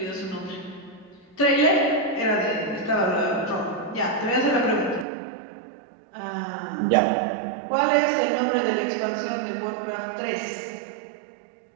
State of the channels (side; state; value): left; drops out; at 5.1 s